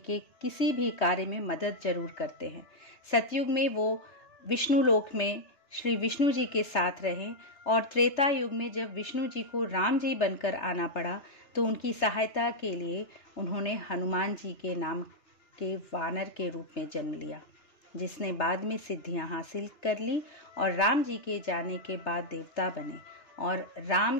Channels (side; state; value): right; late; 3.3 ms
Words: किसी भी कार्य में मदद जरूर करते हैं। सतयुग में वो विष्णु लोक में श्री विष्णु जी के साथ रहे, और त्रेता युग में जब विष्णु जी को राम जी बनकर आना पड़ा तो उनकी सहायता के लिए उन्होंने हनुमान जी के नाम के वानर के रूप में जन्म लिया, जिसने बाद में सिद्धियां हासिल कर ली और राम जी के जाने के बाद देवता बने, और राम